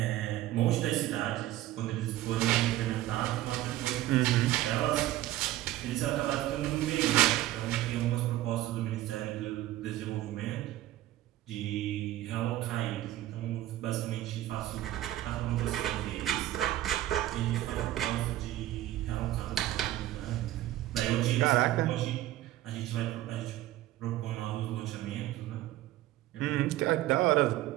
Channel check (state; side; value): quieter; left; 14.9 dB